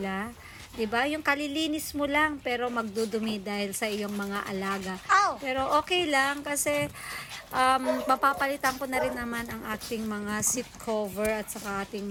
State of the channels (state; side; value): identical; both; correlation 1.00